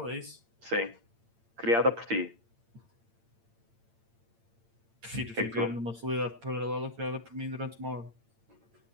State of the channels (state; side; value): late; left; 8.8 ms